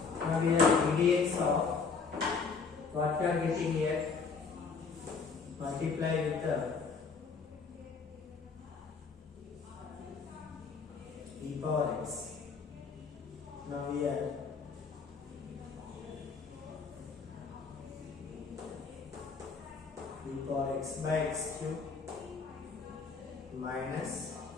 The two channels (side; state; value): right; quieter; 5.0 dB